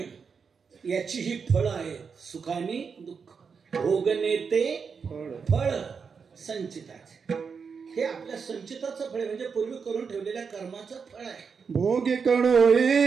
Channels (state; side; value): quieter; left; 5.8 dB